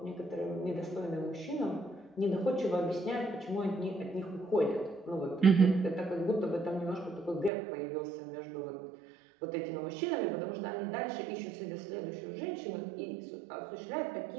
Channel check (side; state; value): left; drops out; at 7.5 s